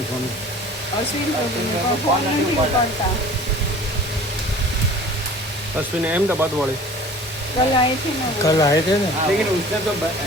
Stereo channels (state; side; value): normal; both; correlation 0.45